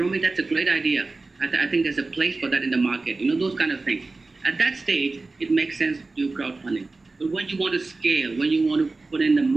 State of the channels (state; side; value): quieter; left; 3.5 dB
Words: that's a great idea. I think there's a place for that in the market. Those kind of things. At that stage, it makes sense to do crowdfunding. But when you want to scale, when you want to put in the